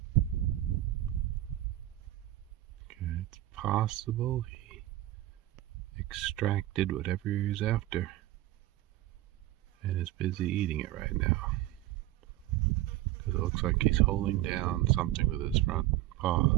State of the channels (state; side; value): quieter; left; 15.4 dB